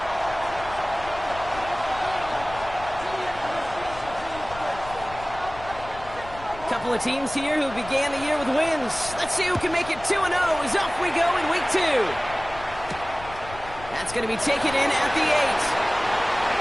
Couple of teams here who began the year with wins. Let's see who can make it 2-0 as off we go in week 2. That's going to be taken in at the 8.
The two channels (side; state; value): left; noise; rumble, 16 dB below the sound